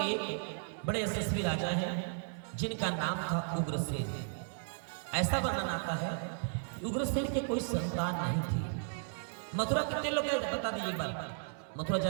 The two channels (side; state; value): left; silent; digital silence